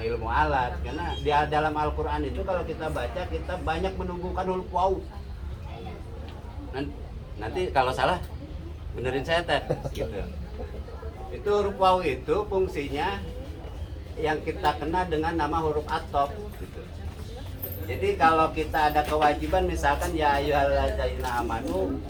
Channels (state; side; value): identical; both; correlation 1.00